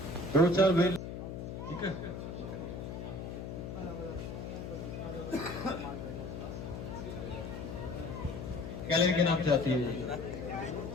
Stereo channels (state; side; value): noise; left; hum, 7 dB below the sound